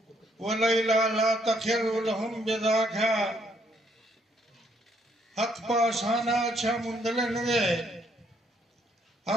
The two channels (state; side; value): normal; both; correlation 0.69